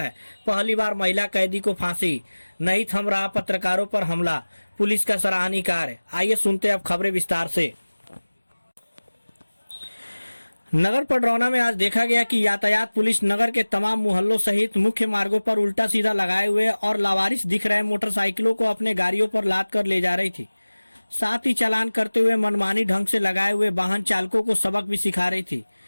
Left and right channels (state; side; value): inverted; both; correlation -1.00